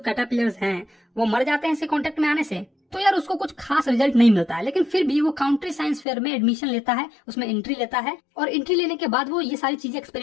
हैं वो मर जाते हैं इसे कांटेक्ट में आने से। तो यार उसको कुछ खास रिजल्ट नहीं मिलता है, लेकिन फिर भी वो काउंट्री साइंस फेयर में एडमिशन लेता है, उसमें एंट्री लेता है और एंट्री लेने के बाद वो ये सारी चीजें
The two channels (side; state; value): right; drops out; at 6.1 s